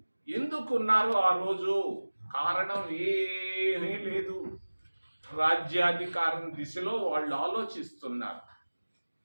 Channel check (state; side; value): inverted; both; correlation -1.00